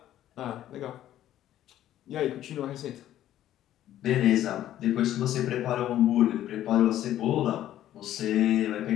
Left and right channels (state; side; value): quieter; right; 12.5 dB